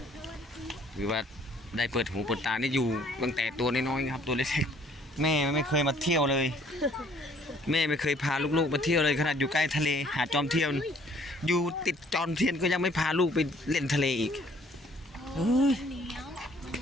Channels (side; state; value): both; normal; correlation 0.60